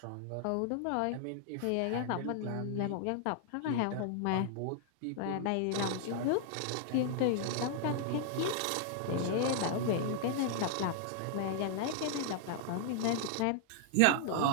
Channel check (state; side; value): different; both; correlation -0.01